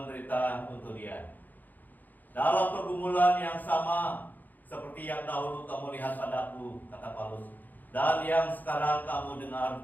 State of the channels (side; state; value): right; late; 0.084 ms